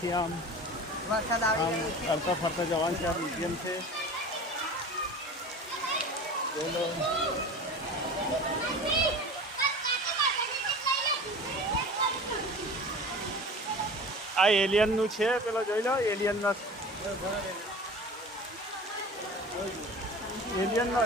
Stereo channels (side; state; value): both; normal; correlation 0.37